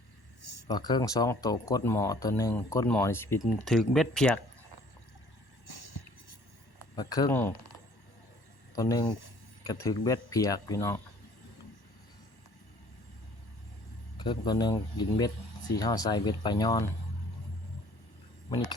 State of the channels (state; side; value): late; right; 1.1 ms